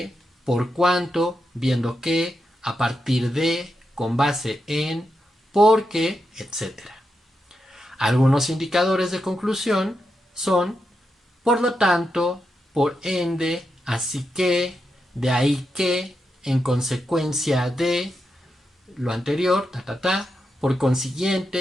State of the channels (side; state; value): both; normal; correlation 0.86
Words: por cuanto, viendo que, a partir de, con base en, porque, etc. Algunos indicadores de conclusión son: por lo tanto, por ende, así que, de ahí que, en consecuencia de lo anterior, por